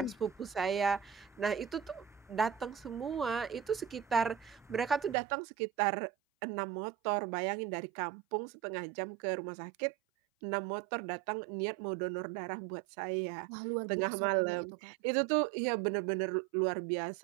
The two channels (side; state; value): left; drops out; at 5.2 s